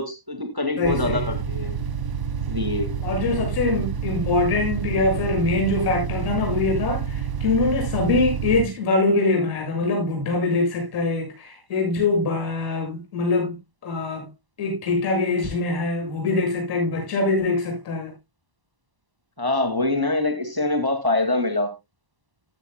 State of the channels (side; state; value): left; late; 1.0 ms